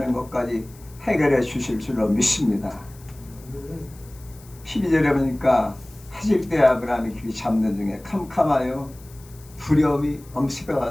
것까지 해결해 주실 줄로 믿습니다. 12절에 보니까 하질 때 아브라함이 길이 잡는 중에 캄캄하여 두려움이 엄습해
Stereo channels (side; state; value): left; noise; hiss, 24 dB below the sound